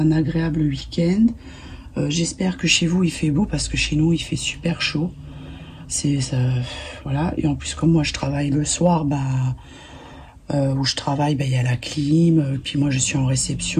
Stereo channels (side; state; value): both; identical; correlation 1.00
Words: agréable week-end. J'espère que chez vous, il fait beau, parce que chez nous, il fait super chaud. C'est ça, voilà. Et en plus, comme moi, je travaille le soir, où je travaille, il y a la clim, puis moi je suis en